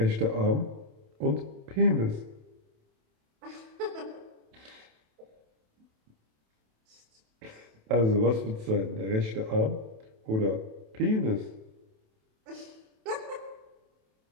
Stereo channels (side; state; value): left; late; 27 ms